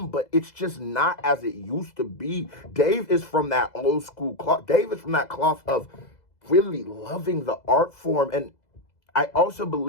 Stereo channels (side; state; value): right; late; 2.0 ms